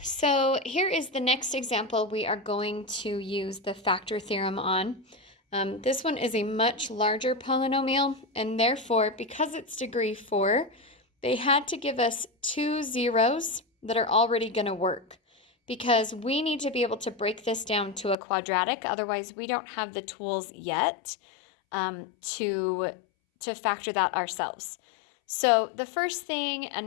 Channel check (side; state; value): right; drops out; at 18.2 s